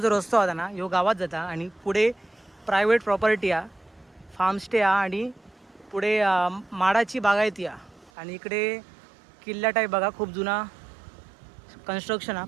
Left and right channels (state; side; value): drops out; left; at 8.1 s